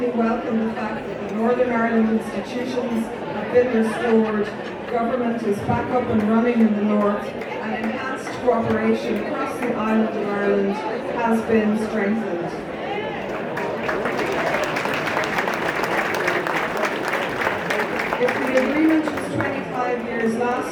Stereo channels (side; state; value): both; identical; correlation 1.00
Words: welcome the fact that the Northern Ireland institutions have been restored, government is back up and running in the north, and enhanced cooperation across the island of Ireland has been strengthened. If the agreement was 25 years